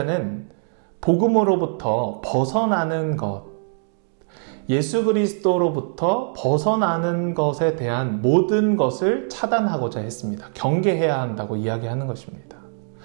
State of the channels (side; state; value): left; silent; 64 dB below the other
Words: 복음으로부터 벗어나는 것, 예수 그리스도로부터 벗어나는 것에 대한 모든 것을 차단하고자 했습니다. 경계해야 한다고 이야기하는 것입니다.